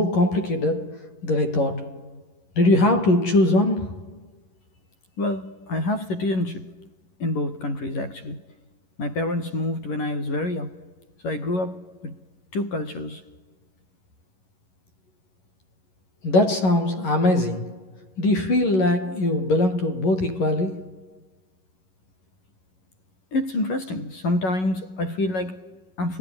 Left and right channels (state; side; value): late; right; 11 ms